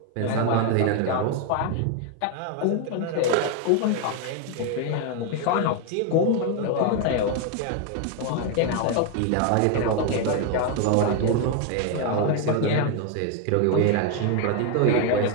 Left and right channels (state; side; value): different; both; correlation 0.01